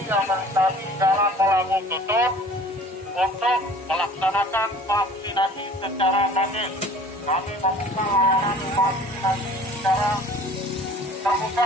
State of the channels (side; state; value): both; normal; correlation 0.48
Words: yang melintasi jalan Melabu Tutut untuk melaksanakan vaksinasi secara gratis. Kami membuka layanan vaksinasi secara